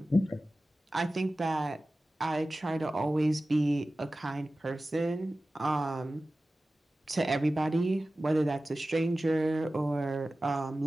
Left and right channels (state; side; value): normal; both; correlation 0.96